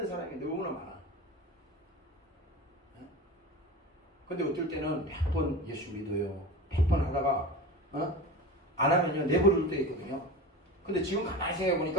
사람이 너무나 많아. 근데 어떨 때는 100번 예수 믿어요. 100번 하다가 안 하면요 내버릴 때 있거든요. 근데 지금 가만히 생각해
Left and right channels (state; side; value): normal; both; correlation 0.31